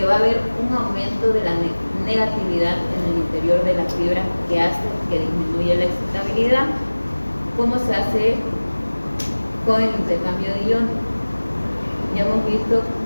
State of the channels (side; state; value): both; inverted; correlation -1.00